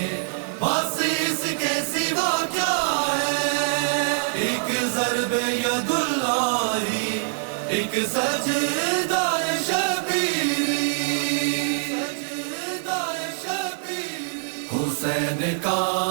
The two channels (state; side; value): silent; left; digital silence